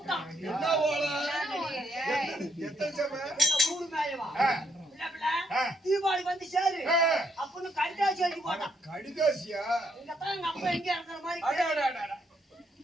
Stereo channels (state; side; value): normal; both; correlation 0.74